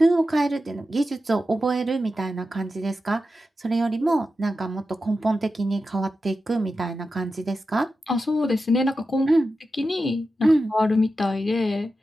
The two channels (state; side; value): normal; both; correlation 0.91